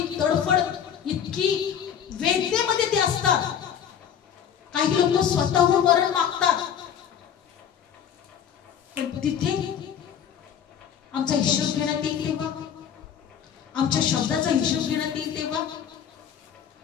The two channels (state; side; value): quieter; right; 8.7 dB